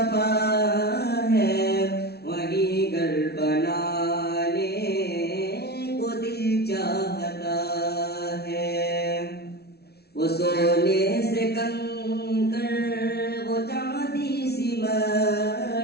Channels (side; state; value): right; late; 0.47 ms